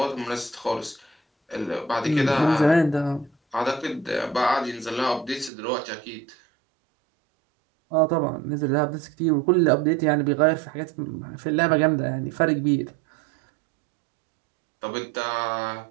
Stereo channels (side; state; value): left; drops out; at 5.5 s